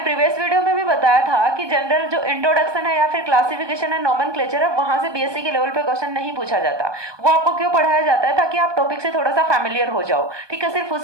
वीडियो में भी बताया था कि जनरल जो इंट्रोडक्शन है या फिर क्लासिफिकेशन है, नोमेनक्लेचर है, वहां से बीएससी के लेवल पे क्वेश्चन नहीं पूछा जाता। वो आपको क्यों पढ़ाया जाता है? ताकि आप टॉपिक से थोड़ा सा फैमिलियर हो जाओ। ठीक है, सिर्फ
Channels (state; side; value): late; left; 1.2 ms